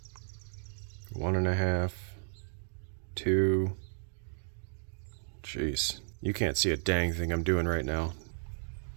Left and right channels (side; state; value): left; silent; digital silence